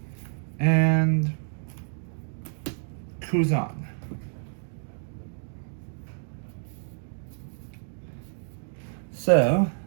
and Kuzan. So,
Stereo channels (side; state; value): left; silent; digital silence